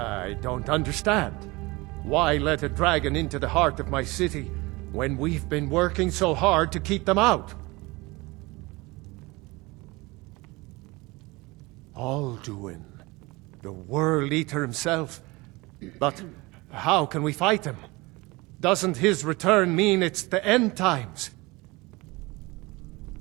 don't understand. Why let a dragon into the heart of my city when we've been working so hard to keep them out? Alduin, the World Eater himself. But how can we fight him? Doesn't his return mean it's the end times?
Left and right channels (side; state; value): left; quieter; 23.3 dB